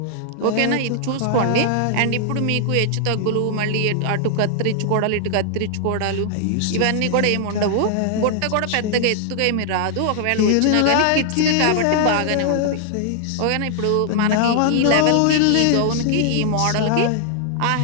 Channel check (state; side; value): different; both; correlation 0.00